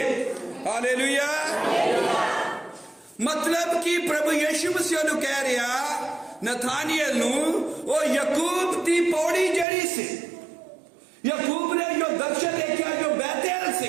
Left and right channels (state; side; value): drops out; left; at 9.7 s